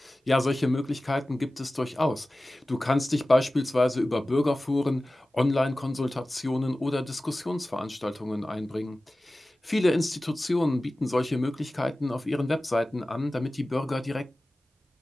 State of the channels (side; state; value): both; normal; correlation 0.96